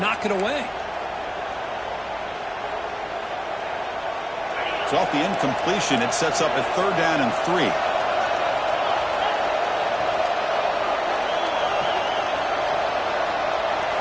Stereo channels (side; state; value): both; identical; correlation 1.00